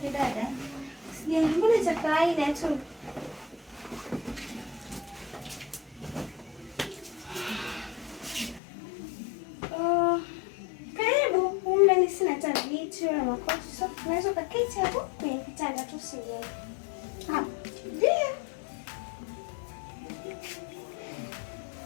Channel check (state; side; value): drops out; right; at 8.6 s